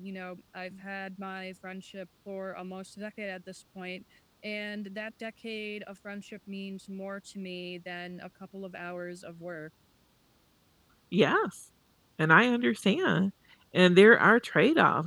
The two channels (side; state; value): both; identical; correlation 1.00